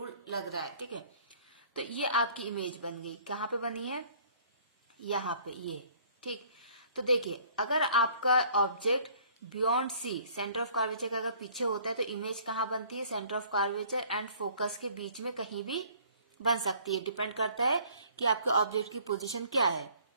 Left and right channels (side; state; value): both; inverted; correlation -0.56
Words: लग रहा है, ठीक है। तो ये आपकी इमेज बन गई, कहाँ पे बनी है, यहाँ पे, ये, ठीक। तो देखिए अगर आपका object beyond C, centre of curvature का अगर पीछे होता है तो इमेज कहाँ बनती है, centre of curvature and focus के बीच में कहीं भी बन सकती है, डिपेंड करता है कि आपके ऑब्जेक्ट की पोजीशन क्या है।